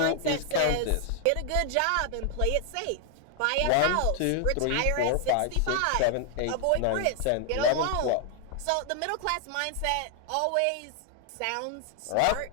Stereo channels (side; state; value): both; different; correlation 0.00